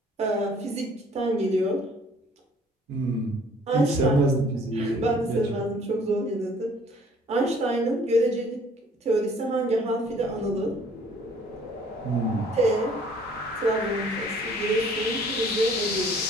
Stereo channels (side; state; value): both; normal; correlation 0.56